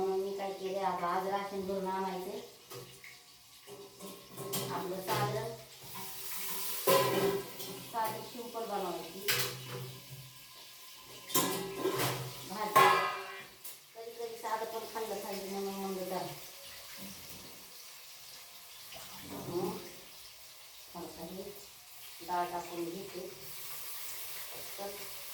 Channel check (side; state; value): both; identical; correlation 1.00